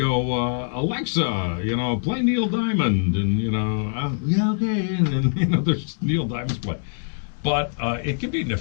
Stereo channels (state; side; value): silent; right; digital silence